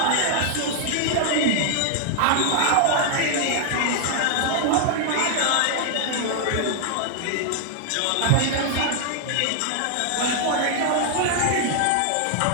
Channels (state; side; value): different; both; correlation 0.00